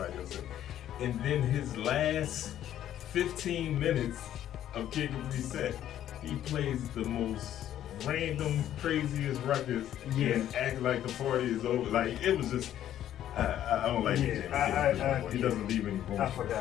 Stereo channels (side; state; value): right; quieter; 11.5 dB